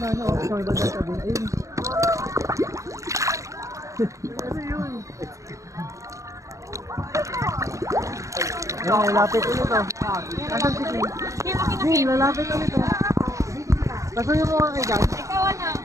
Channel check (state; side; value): late; left; 0.15 ms